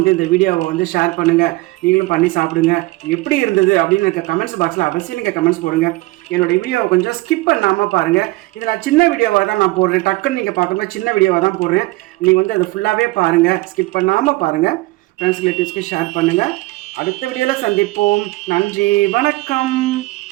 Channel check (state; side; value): quieter; left; 21.1 dB